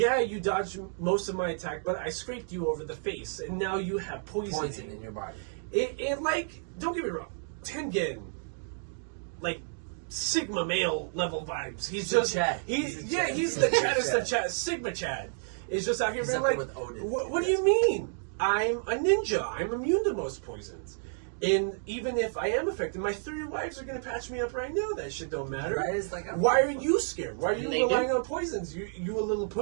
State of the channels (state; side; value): silent; left; digital silence